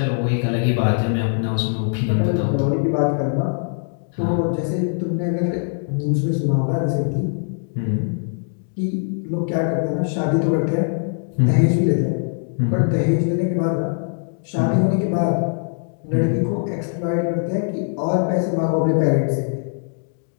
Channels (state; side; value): silent; right; digital silence